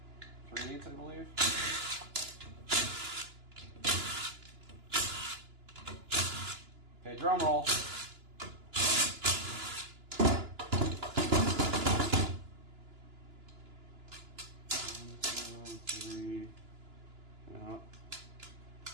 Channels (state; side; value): late; left; 2.9 ms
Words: 3/8, I believe. Okay, drum roll. One, two, three. Yeah.